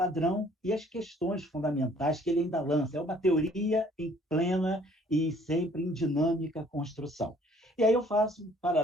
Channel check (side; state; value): both; normal; correlation 0.58